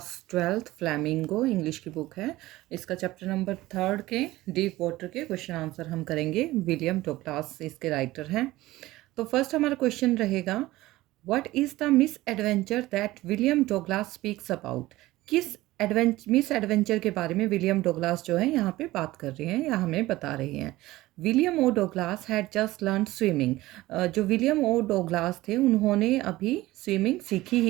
12th फ्लैमिंगो इंग्लिश की बुक है। इसका चैप्टर नंबर 3 के डीप वाटर के क्वेश्चन आंसर हम करेंगे। विलियम डगलास इसके राइटर हैं। तो फर्स्ट हमारा क्वेश्चन रहेगा, what is the miss adventure that William Douglas speaks about. किस मिस एडवेंचर के बारे में विलियम डगलास जो है यहाँ पे बात कर रहे हैं या हमें बता रहे हैं। William O Douglas had just learn swimming. जो विलियम ओ डगलास थे उन्होंने अभी स्विमिंग सीखी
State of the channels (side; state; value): left; quieter; 17.7 dB